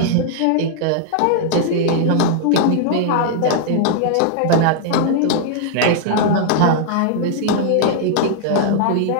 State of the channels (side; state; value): both; different; correlation -0.01